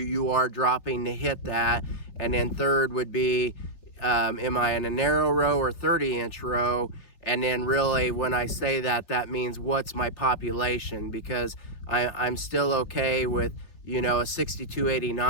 are dropping to hit that? And then third would be, am I in a narrow row or 30-inch row? And then really, when I say that, that means what's my population? Because I'm still okay with, a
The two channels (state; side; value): late; right; 3.4 ms